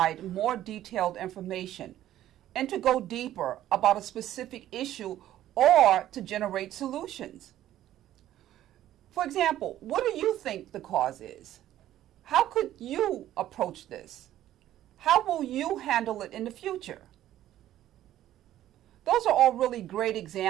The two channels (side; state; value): left; quieter; 12.8 dB